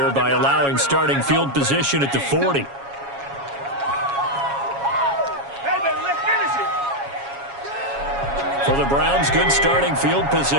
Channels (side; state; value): left; late; 7.2 ms